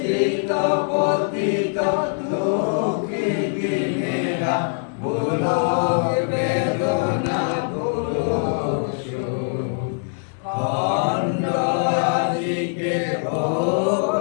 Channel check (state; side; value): silent; right; digital silence